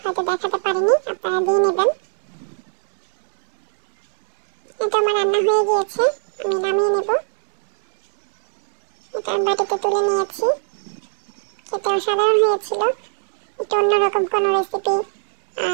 হয়তো দেখাতে পারিনি, আপনারা দিয়ে নেবেন। এটা আমার রান্না হয়ে গিয়েছে, আমি নামিয়ে নেব। এটা আমি বাটিতে তুলে নিয়েছি। খেতে অসাধারণ হয়েছিল, একটু অন্যরকম কোনো রেসিপি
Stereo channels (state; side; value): silent; left; 66 dB below the other